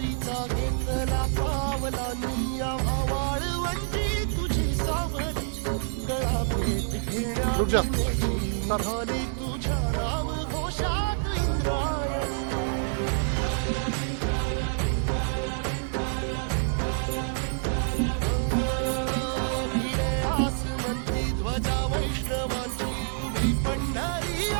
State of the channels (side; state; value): left; silent; 60 dB below the other